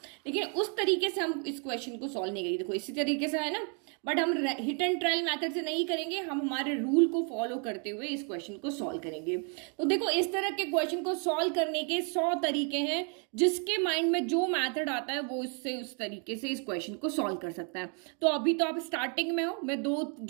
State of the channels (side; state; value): left; quieter; 39.6 dB